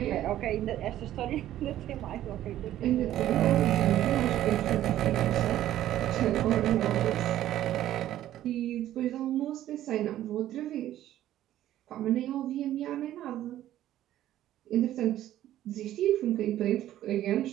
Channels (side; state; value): left; quieter; 12.9 dB